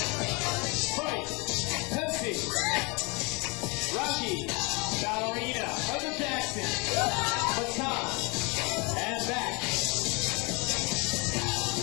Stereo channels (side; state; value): right; quieter; 29.5 dB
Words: Pepsi. Rocky. Ballerina. Michael Jackson. Baton. And back.